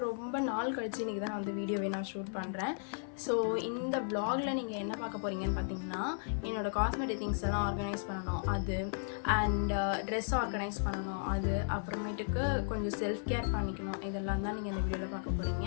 ரொம்ப நாள் கழிச்சு இன்றைக்கி தான் வந்து வீடியோவை நான் ஷூட் பண்ணுறேன். ஸோ இந்த வ்ளாகில் நீங்கள் என்ன பார்க்க போகிறீங்கன்னு பார்த்தீங்கன்னா, என்னோடய காஸ்மெட்டிக் திங்ஸ் எல்லாம் ஆர்கனைஸ் பண்ணணும் அது, அண்ட் ட்ரெஸ் ஆர்கனைஸ் பண்ணணும் அது, அப்புறமேட்டுக்கு கொஞ்சம் செல்ஃப் கேர் பண்ணிக்கணும். இதெல்லாம் தான் நீங்கள் இந்த வீடியோவில் பார்க்க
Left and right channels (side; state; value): right; silent; 54 dB below the other